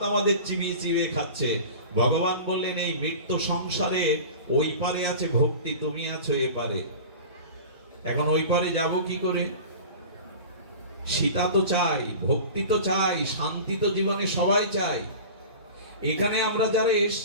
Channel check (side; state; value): both; inverted; correlation -0.36